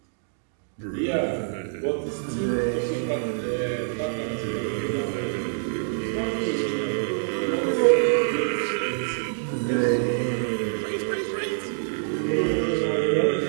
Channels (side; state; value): left; silent; digital silence